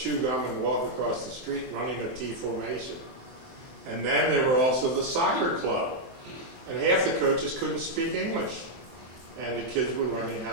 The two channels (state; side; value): late; left; 23 ms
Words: gum and walk across the street running a T formation. And then there were also the soccer club, and half the coaches couldn't speak English, and the kids were learning how